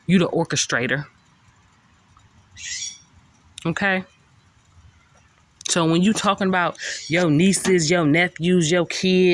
You the orchestrator. Okay? So when you talking about your nieces, your nephews, your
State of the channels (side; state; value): both; identical; correlation 1.00